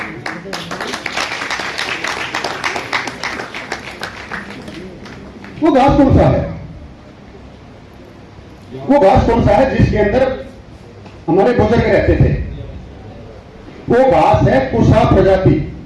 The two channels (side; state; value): both; identical; correlation 1.00